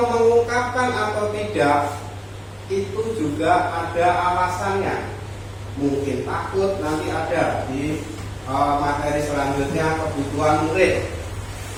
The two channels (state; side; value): identical; both; correlation 1.00